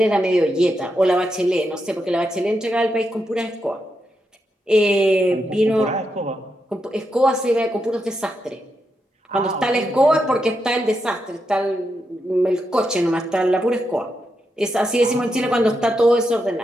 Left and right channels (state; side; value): normal; both; correlation 0.84